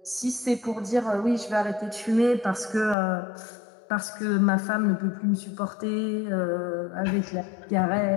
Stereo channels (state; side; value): drops out; right; at 3.0 s